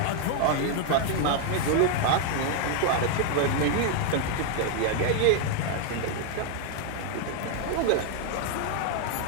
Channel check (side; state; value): both; different; correlation 0.00